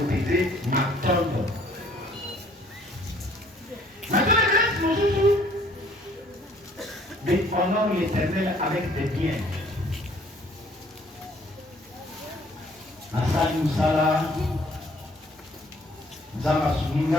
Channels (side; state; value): both; normal; correlation 0.59